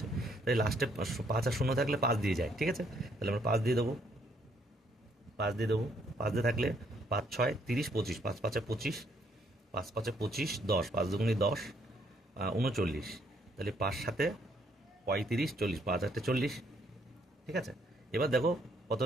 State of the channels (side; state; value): both; normal; correlation 0.69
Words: তাই লাস্টে 5 আর শূন্য থাকলে 5 দিয়ে যায়, ঠিক আছে। তাহলে আমরা 5 দিয়ে দেবো, 5 দিয়ে দেবো। 5 দিয়ে থাকলে 5 6 30 25, 5 5 25, 5 5 25 10, 5 দুগুণি 10 39, তাহলে 5 7 35 40, 5 8 40, ঠিক আছে। এবার দেখো কত